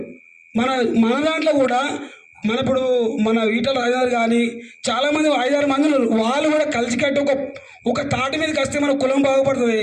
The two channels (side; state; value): both; identical; correlation 1.00